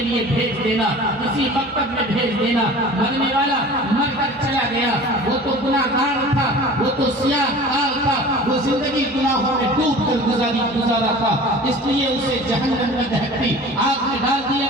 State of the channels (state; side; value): normal; both; correlation 0.41